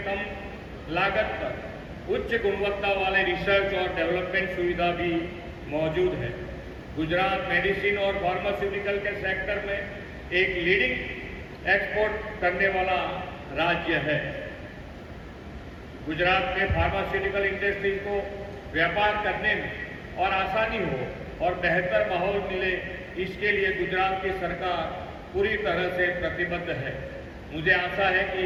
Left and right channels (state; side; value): identical; both; correlation 1.00